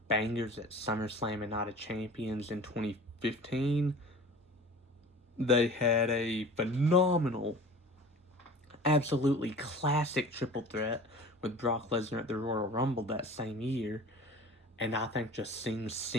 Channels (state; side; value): normal; both; correlation 0.41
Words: bangers at SummerSlam and Night of Champions in 2015. They had a phenomenal, absolutely classic triple threat with Brock Lesnar at the Royal Rumble that same year. And I think just seeing